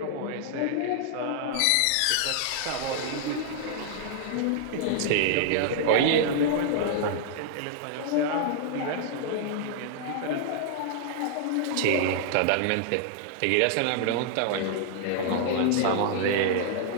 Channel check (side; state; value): both; different; correlation 0.00